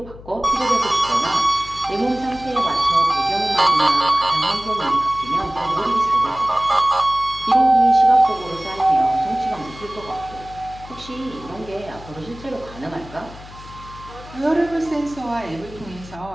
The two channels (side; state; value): left; noise; hum, 17 dB below the sound